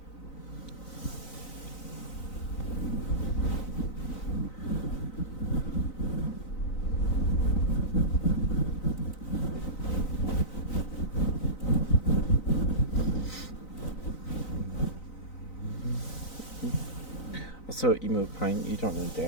Also, Emo Pine, you don't know the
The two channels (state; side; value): late; right; 3.9 ms